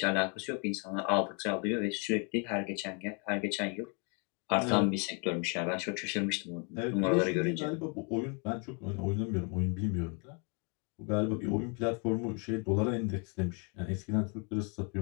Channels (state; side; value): quieter; right; 36.0 dB